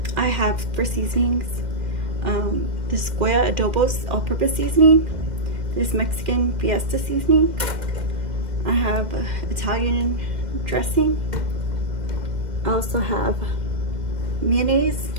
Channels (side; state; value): left; late; 2.1 ms